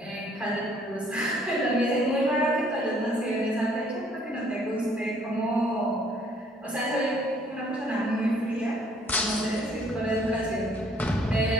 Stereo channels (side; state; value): both; normal; correlation 0.62